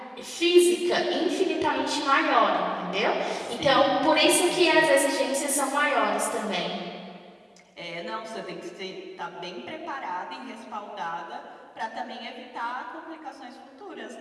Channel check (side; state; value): both; identical; correlation 1.00